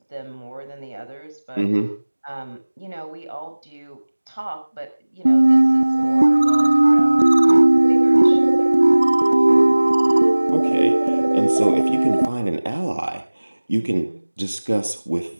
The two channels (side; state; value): both; inverted; correlation -1.00